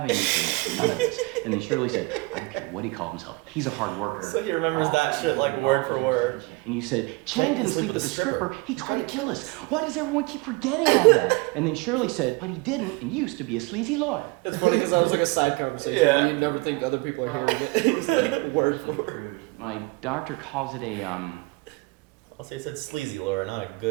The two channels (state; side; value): quieter; left; 25.1 dB